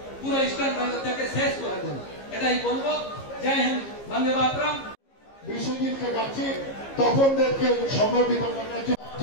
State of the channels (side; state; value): right; late; 15 ms